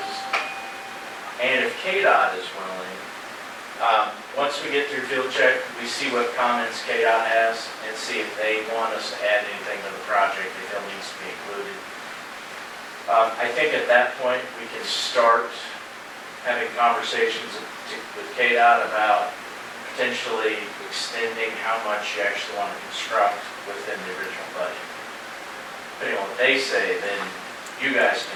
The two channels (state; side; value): identical; both; correlation 1.00